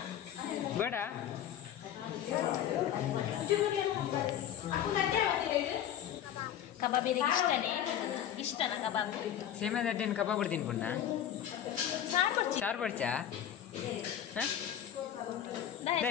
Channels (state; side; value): quieter; right; 10.4 dB